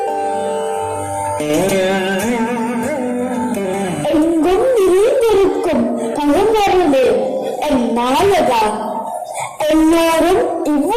எங்கும் நிறைந்திருக்கும் பழமரமே என் நாயகா, எல்லோரும்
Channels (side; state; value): both; identical; correlation 1.00